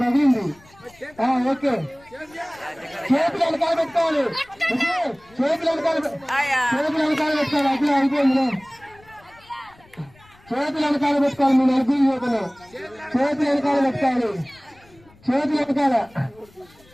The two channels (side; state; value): left; noise; rumble, 28 dB below the sound